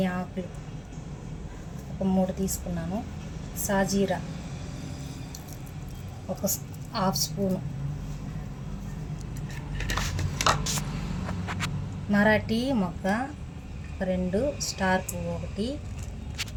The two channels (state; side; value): identical; both; correlation 1.00